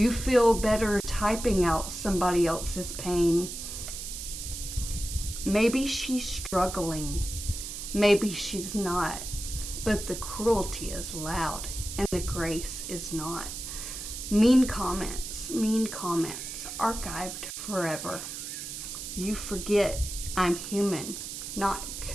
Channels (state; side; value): noise; right; hiss, 7 dB below the sound